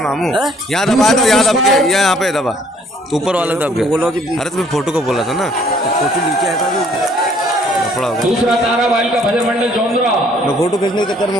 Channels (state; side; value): normal; both; correlation 0.61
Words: यहाँ दबाया था, यहाँ दब के यहाँ पे दबा तो ऊपर वाला दब गया। अरे तुम्हें फोटो को बोला था ना, फोटो नीचे आया था। दूसरा ताराबाई का भजन मंडल चौंदरा मैं फोटो खींचने के चक्कर